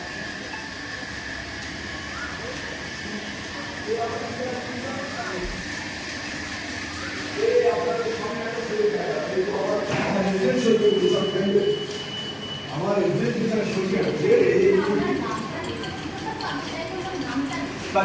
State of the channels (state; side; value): identical; both; correlation 1.00